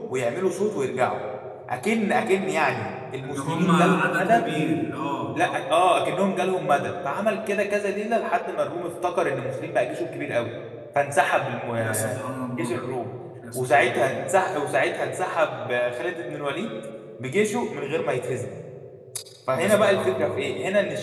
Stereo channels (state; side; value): identical; both; correlation 1.00